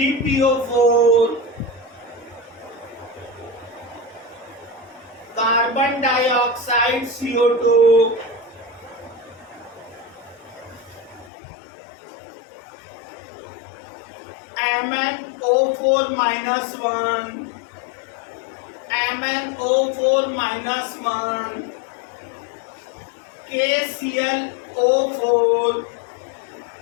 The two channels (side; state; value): right; drops out; at 11.3 s